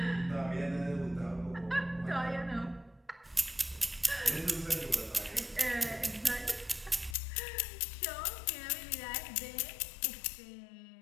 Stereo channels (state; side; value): drops out; right; at 7.2 s